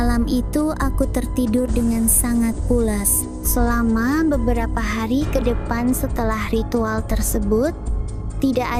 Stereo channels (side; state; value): both; identical; correlation 1.00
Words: itu aku tertidur dengan sangat pulas. Selama beberapa hari ke depan setelah ritual tersebut, tidak